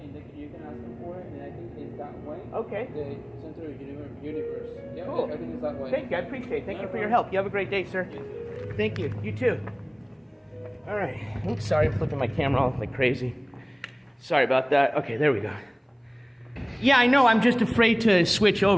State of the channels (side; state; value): both; identical; correlation 1.00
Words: you can ask them for it. And I think it's that way. Okay. The center of the universe. Yeah, cool. I think it's that way. Thank you. I appreciate it. Thank you for your help. You have a great day, sir. Yes. Thank you. You too. All right. Oops, sorry. I'm flipping my camera all like crazy. Sorry about that. Okay, there we go. Yeah, I know. I'm just afraid to switch